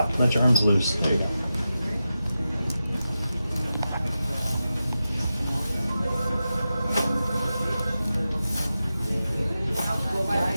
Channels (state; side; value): inverted; both; correlation -0.91